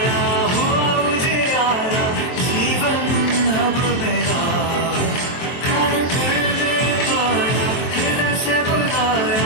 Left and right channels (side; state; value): right; late; 23 ms